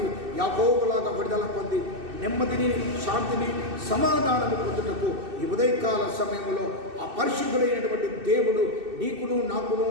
యాకోబులాగా విడుదల పొంది నెమ్మదిని, శాంతిని, సమాధానము పొందుటకు ఈ ఉదయకాల సమయంలో ఆ పరిశుద్ధుడైనటువంటి దేవుడు నీకును, నాకును,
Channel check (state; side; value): late; left; 2.6 ms